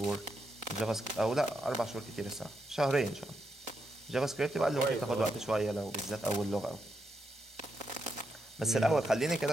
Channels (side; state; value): both; normal; correlation 0.82